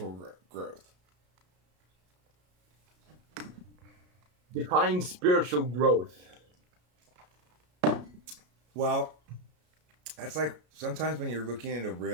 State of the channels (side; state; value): left; late; 33 ms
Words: growth? Define spiritual growth. Well, that's like sometimes when you're looking at a